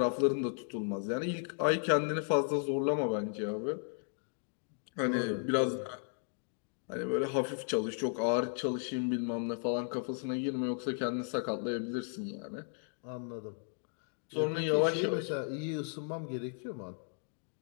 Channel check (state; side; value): silent; right; 54 dB below the other